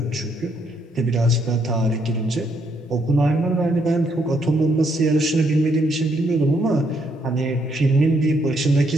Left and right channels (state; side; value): normal; both; correlation 0.73